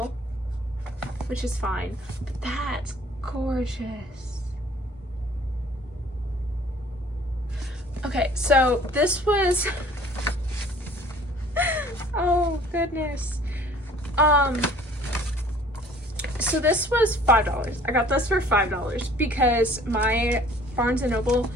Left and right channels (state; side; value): normal; both; correlation 0.53